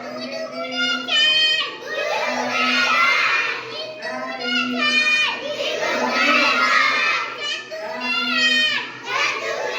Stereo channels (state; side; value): identical; both; correlation 1.00